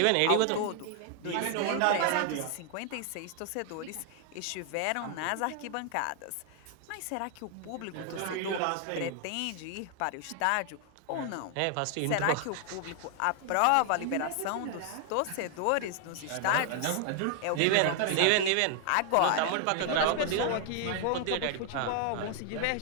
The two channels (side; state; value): both; different; correlation 0.00